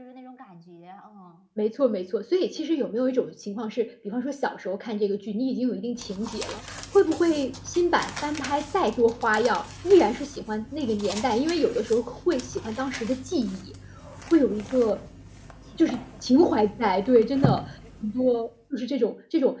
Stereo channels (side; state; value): both; identical; correlation 1.00